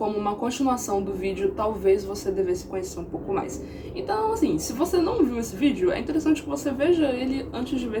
uma continuação do vídeo Talvez Você Devesse Conhecer um Pouco Mais. Então, assim, se você não viu esse vídeo, é interessante que você veja ele antes de ver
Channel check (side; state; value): both; identical; correlation 1.00